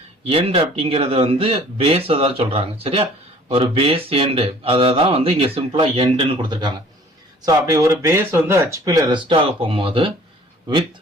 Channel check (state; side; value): normal; both; correlation 0.52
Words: எண்ட் அப்படிங்கிறது வந்து பேஸை தான் சொல்கிறாங்க. சரியா ஒரு பேஸ் எண்டு அதை தான் வந்து இங்கே சிம்பிளாக எண்டுன்னு கொடுத்துருக்காங்க. ஸோ அப்படி ஒரு பேஸ் வந்து ஹெச்பியில் ரெஸ்ட் ஆக போகும்போது வித்